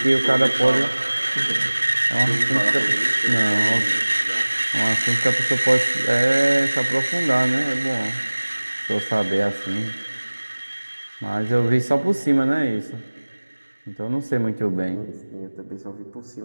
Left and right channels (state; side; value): inverted; both; correlation -1.00